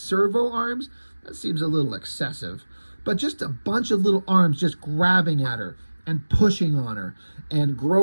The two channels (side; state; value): both; inverted; correlation -1.00